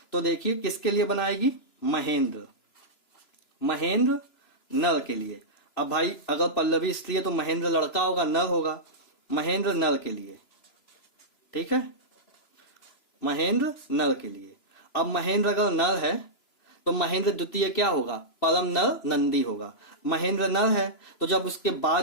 तो देखिए किसके लिए बनाएगी, महेंद्र, महेंद्र नर के लिए। अब भाई अगर पल्लवी स्त्री है तो महेंद्र लड़का होगा, नर होगा, महेंद्र नर के लिए, ठीक है, महेंद्र नर के लिए। अब महेंद्र अगर नर है तो महेंद्र द्वितीय क्या होगा, परम नर नंदी होगा। महेंद्र नर है तो जब उसके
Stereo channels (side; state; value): right; late; 3.0 ms